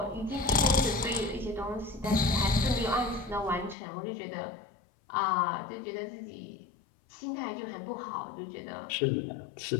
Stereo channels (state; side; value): drops out; right; at 3.8 s